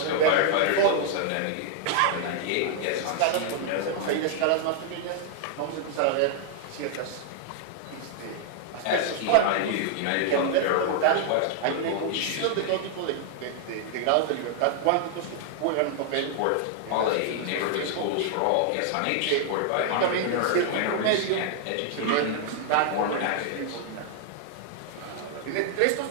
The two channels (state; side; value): different; both; correlation -0.01